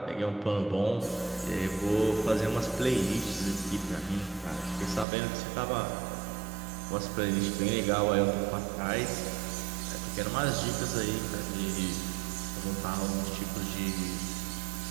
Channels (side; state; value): left; drops out; at 5.1 s